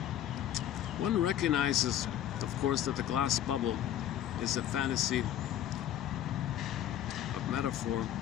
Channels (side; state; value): right; quieter; 11.3 dB